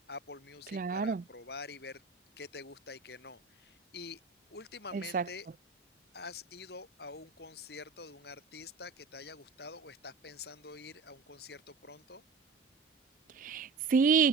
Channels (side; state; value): left; quieter; 4.7 dB